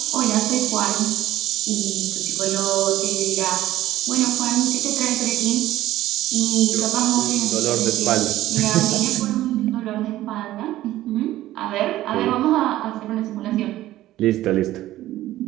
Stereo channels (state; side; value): quieter; left; 14.8 dB